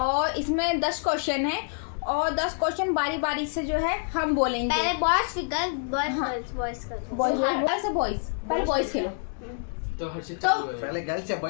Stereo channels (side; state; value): right; silent; digital silence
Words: इसमें 10 क्वेश्चन है और 10 क्वेश्चन बारी बारी से जो है हम बोलेंगे। पहले बॉयज फिर गर्ल्स, बॉयज पहले बॉयज खेलो। तो हर्षित पहले गर्ल्स या